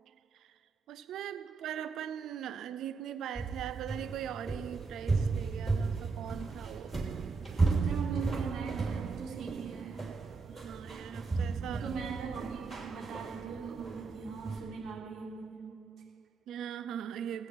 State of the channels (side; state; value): left; quieter; 4.7 dB